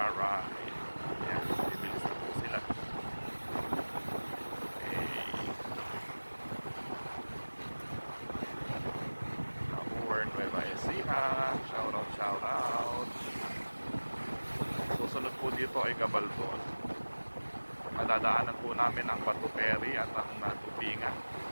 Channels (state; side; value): inverted; both; correlation -1.00